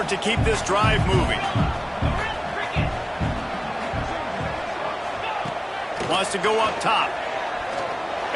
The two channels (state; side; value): identical; both; correlation 1.00